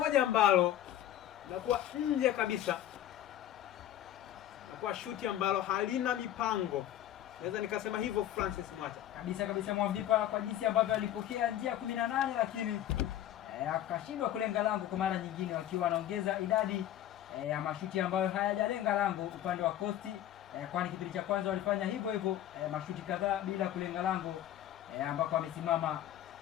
ambalo linakuwa nje kabisa, linakuwa shuti ambalo halina mipango, naweza nikasema hivyo. Francis Mwacha kabisa Mwavipa, kwa jinsi ambavyo alipokea njia 18, lakini akashindwa kulenga lango kwa mara nyingine, wakiwa wanaongeza idadi ya mashuti ambayo hayajalenga lango upande wa Coast, kwani kipindi cha kwanza walifanya hivyo hivyo, mashuti kadhaa bila kulenga lango, ambako amesimama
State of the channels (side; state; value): right; quieter; 12.0 dB